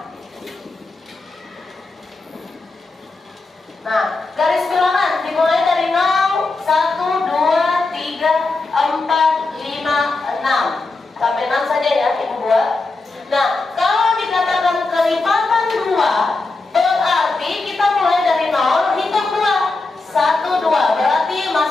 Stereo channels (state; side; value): quieter; right; 3.5 dB